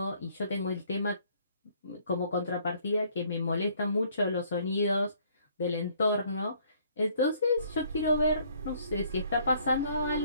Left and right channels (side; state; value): both; inverted; correlation -0.62